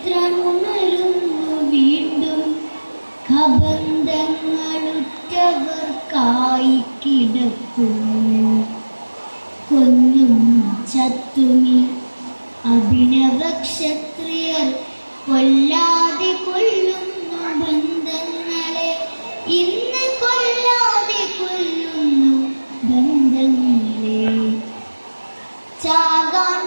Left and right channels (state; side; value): inverted; both; correlation -1.00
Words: വീണ്ടും, കബന്ധങ്ങളുറ്റവർക്കായി കിടക്കുന്നു. കൊന്നും ചത്തുമി അഭിനവ ക്ഷത്രിയർ, കൊല്ലാതെ കൊല്ലുന്നു ബന്ധങ്ങളെ, ഇന്ന് കൊല്ലാതെ കൊല്ലുന്നു ബന്ധങ്ങളെ. ചാകാൻ